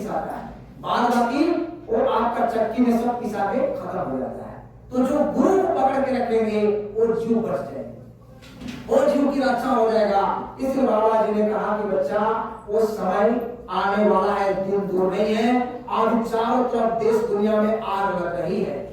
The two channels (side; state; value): both; identical; correlation 1.00